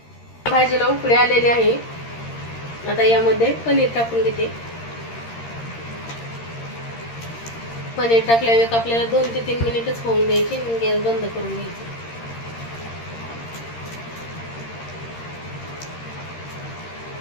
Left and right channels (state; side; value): late; right; 13 ms